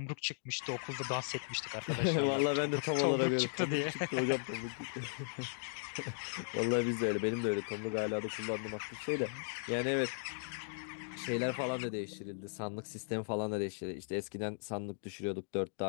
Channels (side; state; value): right; silent; digital silence